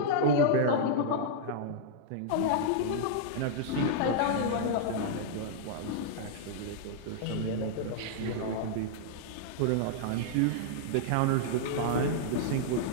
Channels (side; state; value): both; different; correlation -0.01